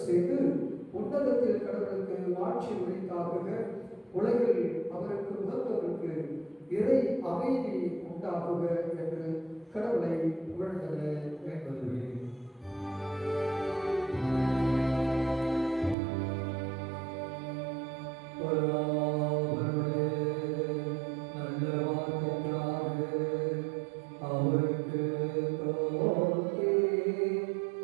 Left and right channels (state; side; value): drops out; left; at 16.0 s